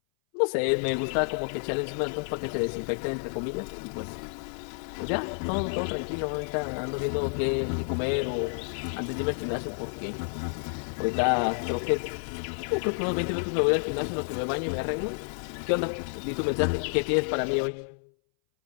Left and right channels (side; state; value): right; silent; 58 dB below the other